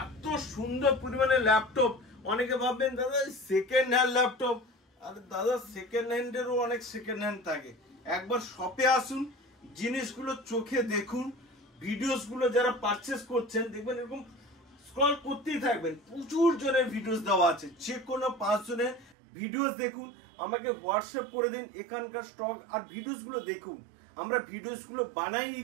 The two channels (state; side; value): drops out; left; at 19.2 s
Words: এত সুন্দর পরিমাণে ল্যাপটপ, অনেকে ভাববেন দাদা সেকেন্ড হ্যান্ড ল্যাপটপ, আরে দাদা সেকেন্ড হ্যান্ডেরও অনেক সেকেন্ড হ্যান্ড থাকে। একবার শপে আসুন, জিনিসগুলো চোখে দেখুন, ভিডিওস গুলো যারা পারচেস করছেন দেখবেন এরকম স্ক্রল করতেই থাকবেন, প্রচুর জনের ভিডিওস দেওয়া আছে, যে কোনো 5 জনের ভিডিওস দেখুন, আমাকে হোয়াটসঅ্যাপ করে দিন এখানকার স্টক আর ভিডিওস গুলো দেখুন। আমরা ভিডিওস গুলো বানাই